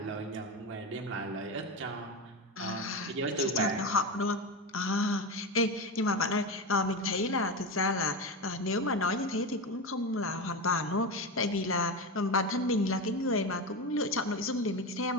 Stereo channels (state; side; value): normal; both; correlation 0.18